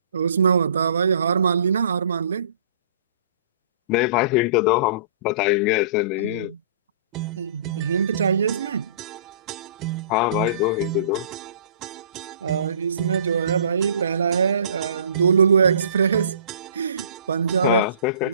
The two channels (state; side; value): inverted; both; correlation -0.47